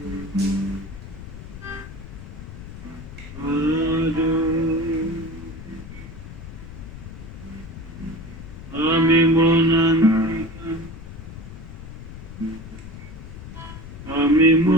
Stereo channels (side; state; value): left; noise; rumble, 13 dB below the sound